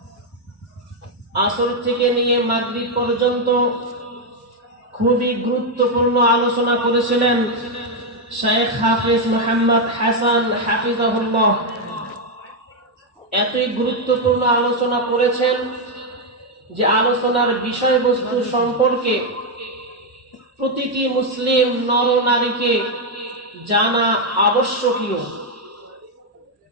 আসর থেকে নিয়ে মাগরিব পর্যন্ত খুবই গুরুত্বপূর্ণ আলোচনা করেছিলেন শেখ হাফেজ মোহাম্মদ হাসান হাফিজাহুল্লাহ। এতই গুরুত্বপূর্ণ আলোচনা করেছেন যে আলোচনার বিষয়বস্তু সম্পর্কে প্রতিটি মুসলিম নর নারীকে জানা আবশ্যকীয়।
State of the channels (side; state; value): both; normal; correlation 0.02